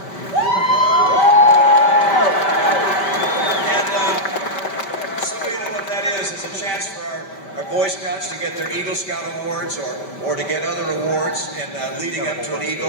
And some of you know what that is. It's a chance for our Boy Scouts to get their Eagle Scout awards or to get other awards in leading up to an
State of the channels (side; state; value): right; late; 5.2 ms